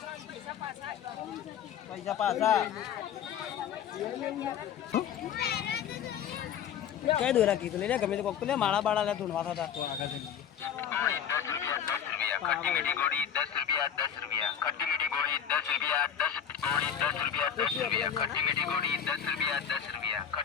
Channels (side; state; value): right; quieter; 8.6 dB